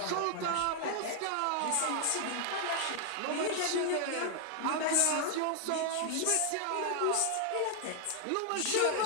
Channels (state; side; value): different; both; correlation 0.00